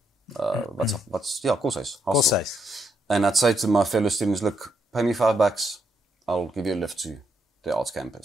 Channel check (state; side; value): normal; both; correlation 0.77